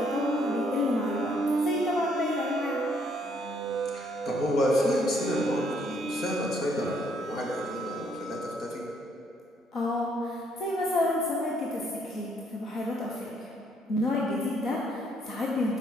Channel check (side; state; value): both; normal; correlation 0.69